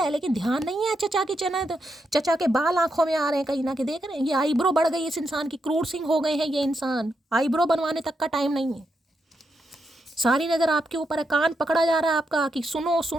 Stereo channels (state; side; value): normal; both; correlation 0.83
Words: लेकिन ध्यान नहीं है। चचा की चचा के बाल आंखों में आ रहे हैं कहीं ना कहीं, देख रहे हैं। ये आईब्रो बढ़ गई इस इंसान की, क्रूर सिंह हो गए हैं ये इंसान, आईब्रो बनवाने तक का टाइम नहीं है। सारी नजर आपके ऊपर है, कान पकड़ा जा रहा है आपका कि सुनो